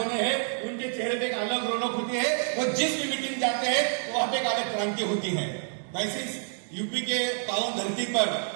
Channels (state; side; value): silent; left; digital silence